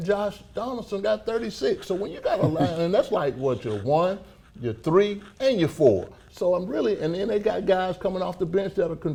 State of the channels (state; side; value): identical; both; correlation 1.00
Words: Josh Donaldson got 36. So when you got a line, and that's like what, your 1, your 3, and your 4. So and then they got guys coming off the bench that are